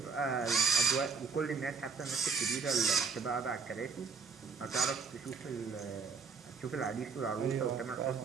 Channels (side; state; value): left; quieter; 5.2 dB